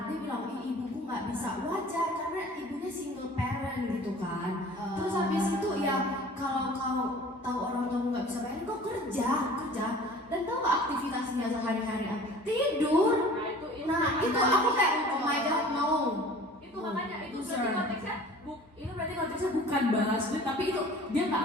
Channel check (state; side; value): normal; both; correlation 0.45